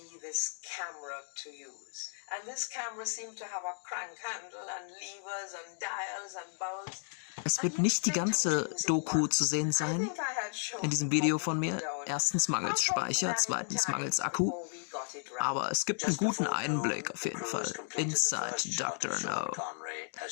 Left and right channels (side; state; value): right; silent; 55 dB below the other